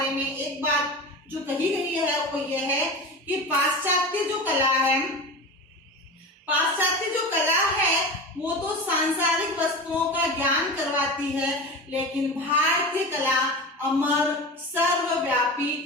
में एक बात जो कही गई है वो यह है कि पाश्चात्य जो कला है वो तो सांसारिक वस्तुओं का ज्ञान करवाती है, लेकिन भारतीय कला अमर, सर्वव्यापी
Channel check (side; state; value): both; normal; correlation 0.29